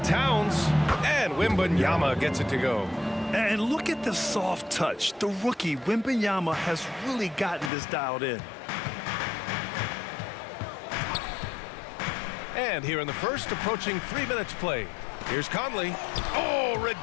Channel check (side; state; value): right; drops out; at 7.7 s